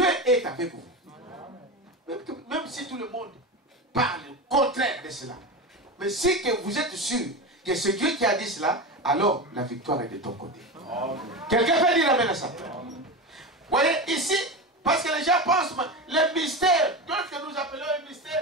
est avec vous. Même si tout le monde parle le contraire de cela. Mais si que vous êtes sûr que c'est Dieu qui a dit cela, alors la victoire est de ton côté. Quelqu'un peut dire amen à ça? Vous voyez, ici, parce que les gens pensent, le mystère, qu'est-ce que nous appelons un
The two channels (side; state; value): both; normal; correlation 0.22